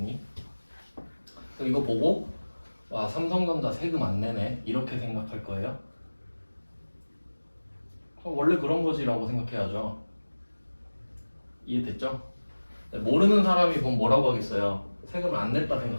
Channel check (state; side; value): inverted; both; correlation -1.00